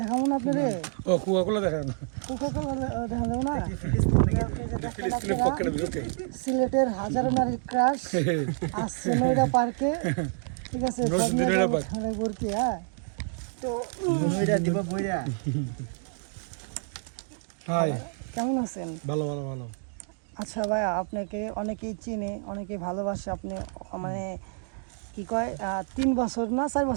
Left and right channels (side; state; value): left; silent; 59 dB below the other